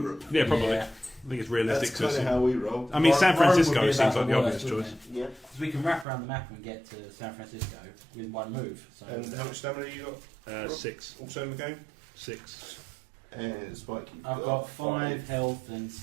Yeah, probably. Yeah. I think it's realistic That's to kind of assume. how we roll. I mean, San Rome would Francisco be seems about like the worst, obvious wouldn't choice. it? Yeah. 'Cause we can wrap around the map and get to San Francisco with one move. So And how much stamina you got? 6. Also in the game? 6. And Spike, you've I've got 5 health and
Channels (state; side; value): drops out; left; at 6.1 s